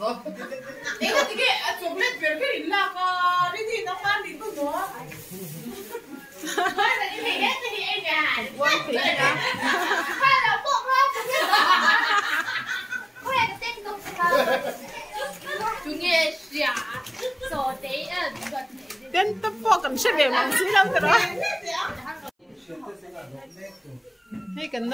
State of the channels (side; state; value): both; identical; correlation 1.00